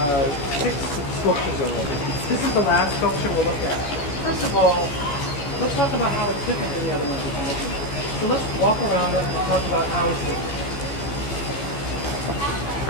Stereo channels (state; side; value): late; right; 14 ms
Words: sculptures already. This is the last sculpture we'll look at. First of all, let's talk about how it's different than the other ones we've been looking at. So let's walk around it and talk about how it's different.